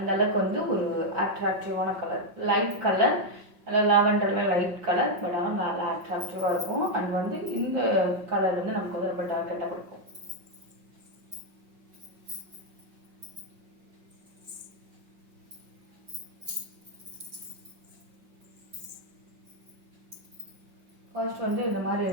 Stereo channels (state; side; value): late; left; 5.5 ms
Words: வந்து ஒரு அட்ராக்டிவான கலர், லைட் கலர், லாவெண்டரில் லைட் கலர், பட் ஆனால் நல்லா அட்ராக்டிவாக இருக்கும். அண்ட் வந்து இந்த கலர் வந்து நமக்கு வந்து ரொம்ப டார்க்கெட்டாக கொடுக்கும். ஃபர்ஸ்ட் வந்து இந்த மாதிரி